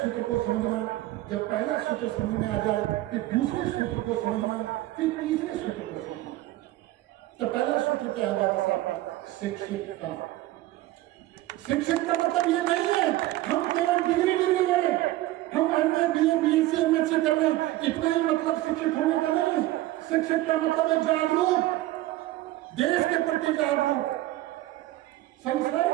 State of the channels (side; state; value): left; quieter; 16.5 dB